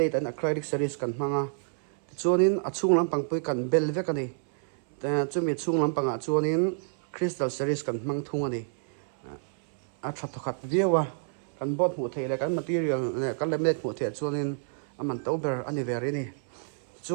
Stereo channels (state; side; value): silent; left; 59 dB below the other